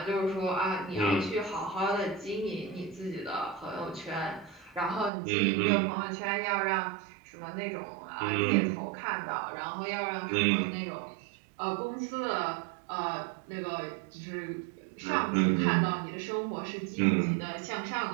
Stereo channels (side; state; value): left; drops out; at 5.1 s